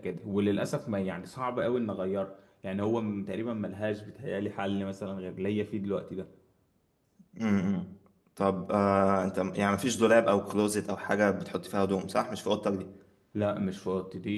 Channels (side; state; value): both; identical; correlation 1.00